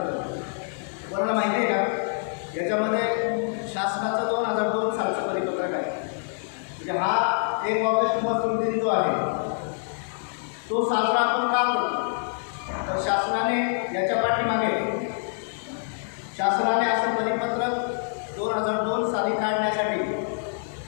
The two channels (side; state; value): right; silent; 61 dB below the other